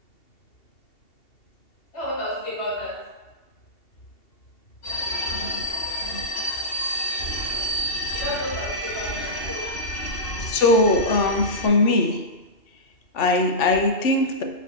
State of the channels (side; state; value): right; late; 2.7 ms